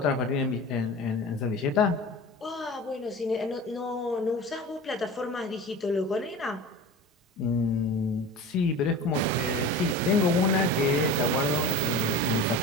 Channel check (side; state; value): both; normal; correlation 0.34